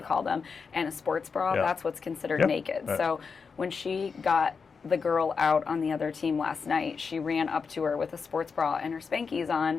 them, and a sports bra. That's what's considered naked. Right. So when she got the girl out on the other team last night, she ran up to her with a sports bra and her spankies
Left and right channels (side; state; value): right; quieter; 5.4 dB